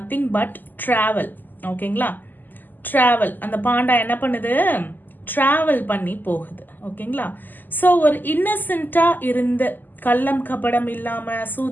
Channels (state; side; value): late; right; 0.088 ms